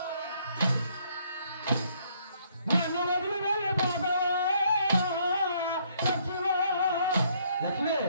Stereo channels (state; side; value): inverted; both; correlation -0.67